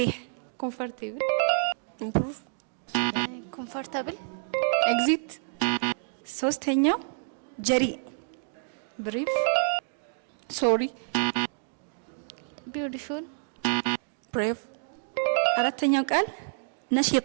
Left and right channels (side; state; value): left; silent; digital silence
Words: comfortable, improve, comfortable, exit, ሶስተኛው ጀሪእ። brief, sorry, beautiful, brave, አራተኛው ቃል